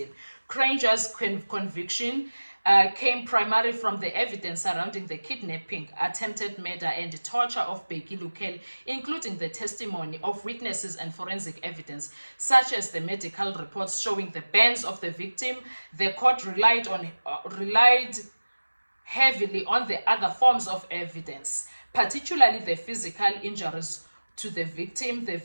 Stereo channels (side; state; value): both; inverted; correlation -1.00